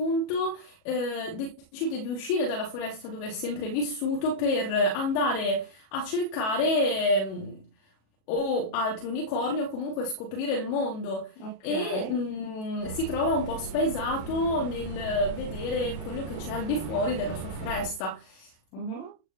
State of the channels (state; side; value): late; right; 37 ms